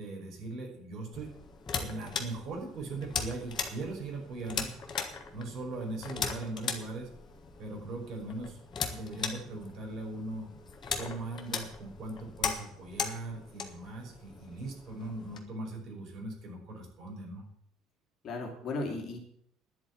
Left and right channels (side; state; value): both; normal; correlation 0.52